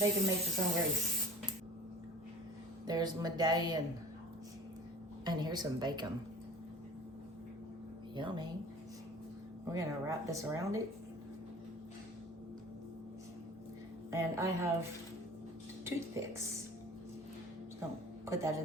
makes its own grease. There's medallion. And here's some bacon. Yummy. We're gonna wrap this around it. And I have toothpicks. Just gonna put that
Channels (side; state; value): both; normal; correlation 0.43